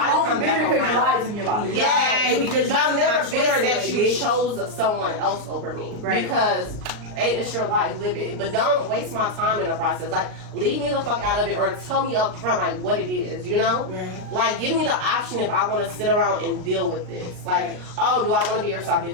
to come back around. Lies in your body. Yeah, because I'm never bitter that you chose someone else over me. Right. Because hey, it's your life, live it. But don't waste my time in the process. Like, leave me the fuck out of it, or tell me up front like what it is, you know? Right. Like, give me the option if I want to sit around and deal with this. Like, oh, do I want to be your side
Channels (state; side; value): late; left; 39 ms